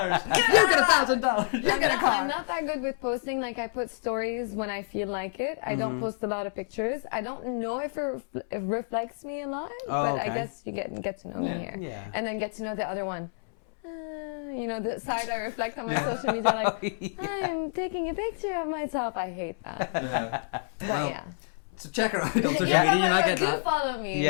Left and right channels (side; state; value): right; silent; 59 dB below the other